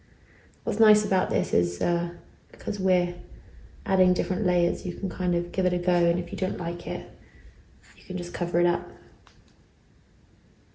What's nice about this is because we're adding different layers, you can kind of give it a go, and if you don't like it, you can just cover it up.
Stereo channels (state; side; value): identical; both; correlation 1.00